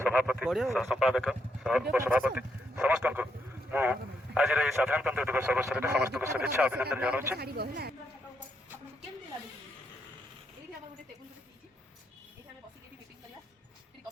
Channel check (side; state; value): both; normal; correlation 0.78